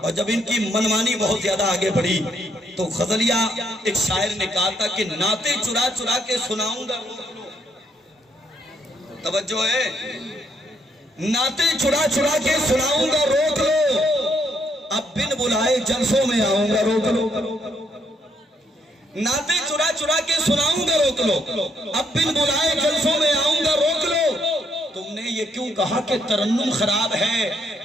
اور جب ان کی منمانی بہت زیادہ آگے بڑھی تو غزلیہ ایک شاعر نے کہا تھا کہ نعتیں چرا چرا کے سناؤں گا. توجہ ہے, نعتیں چرا چرا کے سناؤں گا روک لو, اب بن بلائے جلسوں میں آؤں گا روک لو. نعتیں چرا چرا کے سناؤں گا روک لو, اب بن بلائے جلسوں میں آؤں گا روک لو. تم نے یہ کیوں کہا کہ ترنم خراب ہے,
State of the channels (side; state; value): both; normal; correlation 0.73